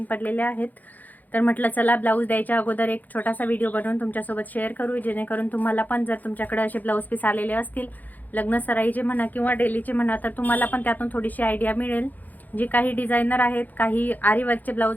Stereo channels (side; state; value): right; late; 0.082 ms